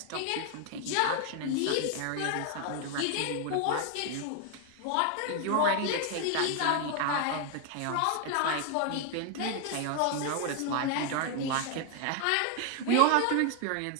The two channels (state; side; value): different; both; correlation 0.01